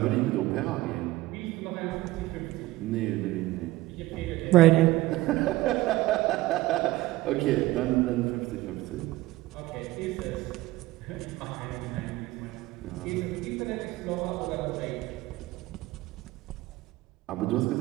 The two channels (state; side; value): quieter; left; 17.8 dB